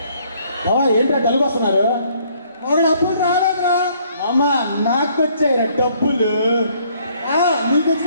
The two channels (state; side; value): inverted; both; correlation -0.64